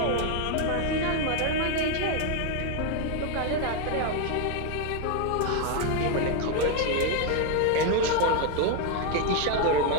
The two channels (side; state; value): both; different; correlation 0.01